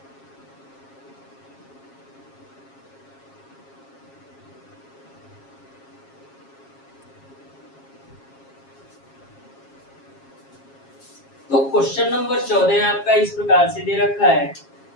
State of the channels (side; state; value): right; late; 7.3 ms